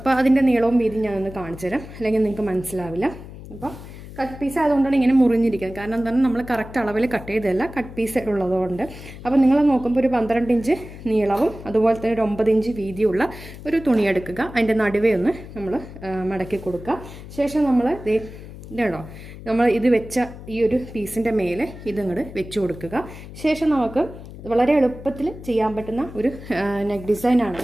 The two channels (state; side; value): noise; left; hum, 14 dB below the sound